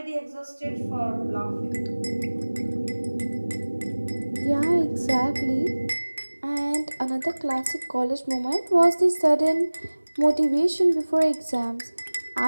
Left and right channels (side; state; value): both; inverted; correlation -1.00